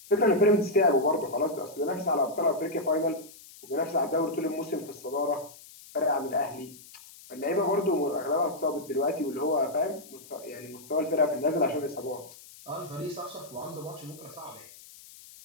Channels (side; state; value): left; noise; hiss, 20 dB below the sound